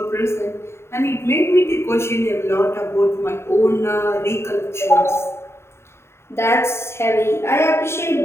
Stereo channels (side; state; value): right; late; 0.12 ms